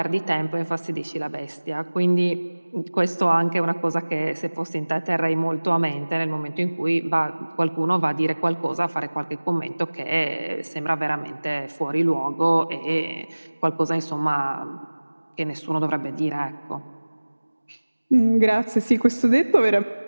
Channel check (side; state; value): both; inverted; correlation -1.00